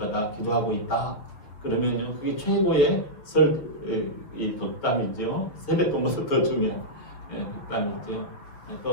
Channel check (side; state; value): right; late; 6.7 ms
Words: 기도하고 있다. 그러면요, 그게 최고의 이 덕담이죠. 세뱃돈보다 더 중요한 덕담이죠.